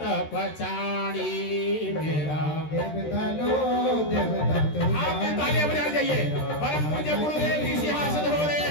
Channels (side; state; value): right; late; 13 ms